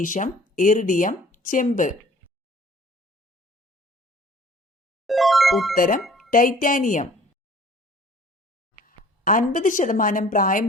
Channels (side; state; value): both; normal; correlation 0.51